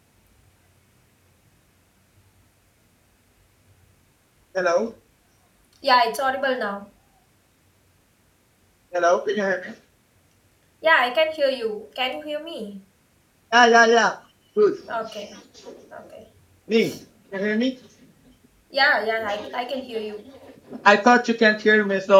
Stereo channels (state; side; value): identical; both; correlation 1.00